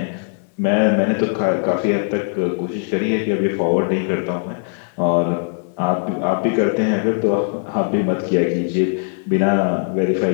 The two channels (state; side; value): silent; right; digital silence